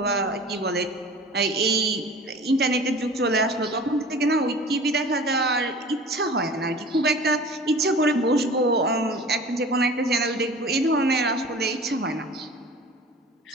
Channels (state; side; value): normal; both; correlation 0.41